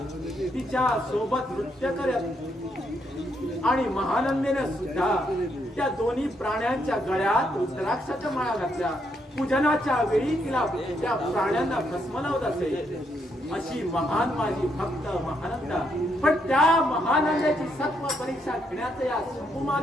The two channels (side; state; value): both; normal; correlation 0.76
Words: तिच्या सोबत नृत्य करत आणि महानंदेने सुद्धा त्या दोन्ही प्राण्यांच्या गळ्यात रुद्राक्षाच्या माळा घातल्या. पूजनाच्या वेळी तिला त्या प्राण्यांना भस्म लावत असे. अशी महान माझी भक्त महानंदा. पण त्या महानंदाची सत्व परीक्षा घेण्याचं या